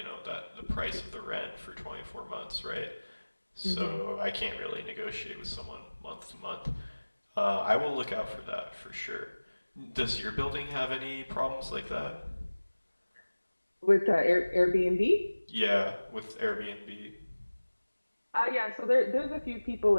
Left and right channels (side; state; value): both; inverted; correlation -1.00